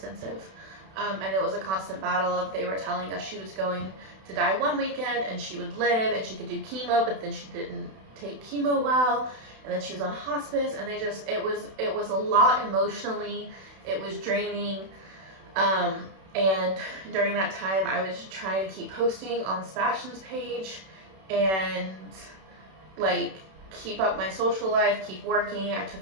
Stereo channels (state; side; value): late; left; 31 ms